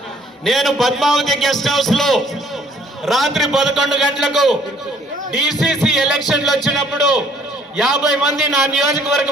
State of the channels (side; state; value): both; normal; correlation 0.60